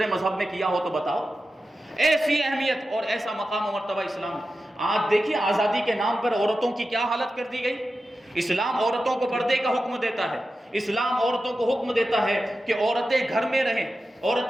مذہب میں کیا ہو تو بتاؤ. ایسی اہمیت اور ایسا مقام و مرتبہ اسلام. آج دیکھیے آزادی کے نام پر عورتوں کی کیا حالت کر دی گئی. اسلام عورتوں کو پردے کا حکم دیتا ہے. اسلام عورتوں کو حکم دیتا ہے کہ عورتیں گھر میں رہیں,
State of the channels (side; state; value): both; normal; correlation 0.92